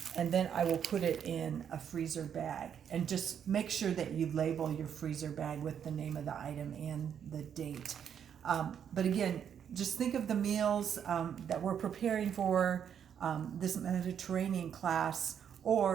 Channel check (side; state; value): left; quieter; 8.4 dB